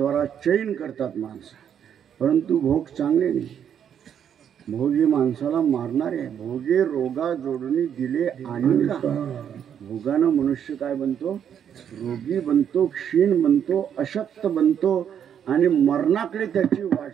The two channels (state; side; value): quieter; left; 8.7 dB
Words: चैन करतात माणसं. परंतु भोग चांगले नाही. भोगी माणसाला मारणारे. भोगे रोगा जोडणी दिले आणि का. भोगानं मनुष्य काय बनतो, रोगी बनतो, क्षीण बनतो, अशक्त बनतो आणि मरणाकडे त्याची